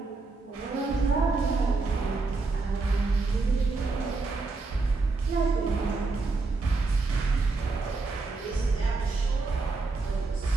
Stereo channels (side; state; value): left; quieter; 3.8 dB